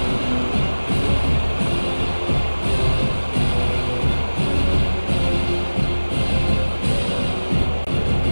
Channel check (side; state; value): both; inverted; correlation -1.00